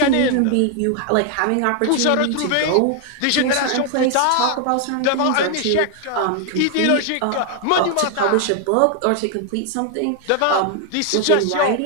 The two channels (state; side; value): different; both; correlation 0.00